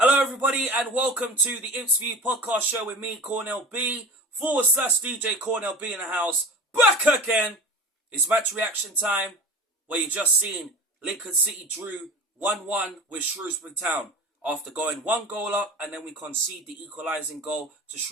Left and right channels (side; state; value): both; normal; correlation 0.34